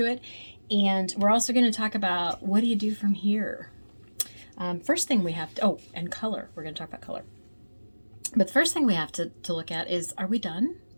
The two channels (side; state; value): both; inverted; correlation -1.00